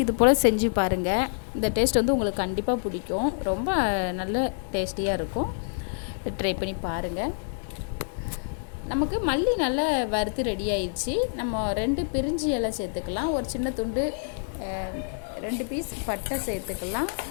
இது போல் செஞ்சு பாருங்கள். இந்த டேஸ்ட் உங்களுக்கு கண்டிப்பாக பிடிக்கும். ரொம்ப நல்ல டேஸ்டியாக இருக்கும். ட்ரை பண்ணி பாருங்கள். நமக்கு மல்லி நல்லா வறுத்து ரெடி ஆயிடுச்சு. நம்ம 2 பிரிஞ்சி இலை சேர்த்துக்கலாம். ஒரு சின்ன துண்டு 2 பீஸ் பட்டை சேர்த்துக்கலாம்.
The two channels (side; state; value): right; silent; 60 dB below the other